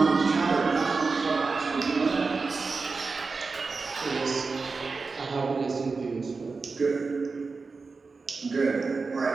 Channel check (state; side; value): quieter; left; 4.3 dB